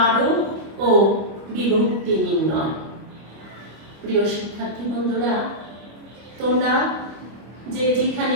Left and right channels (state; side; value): late; left; 25 ms